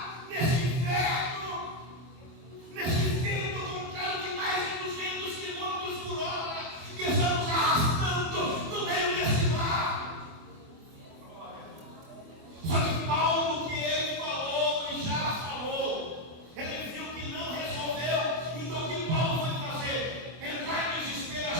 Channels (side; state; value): left; late; 24 ms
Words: nesse inverno, nesse vento contrário de mais de 200 km por hora, que estamos arrastando no meio desse mar? Só que Paulo, que ele falou e já falou, ele viu que não resolveu. Então o que Paulo vai fazer? Entrar em desespero,